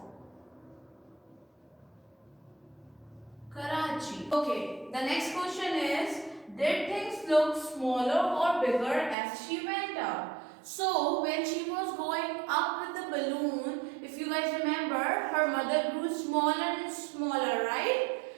Karachi. Okay, the next question is, did things look smaller or bigger as she went up? So when she was going up with the balloon, if you guys remember, her mother grew smaller and smaller, right?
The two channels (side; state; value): left; drops out; at 9.2 s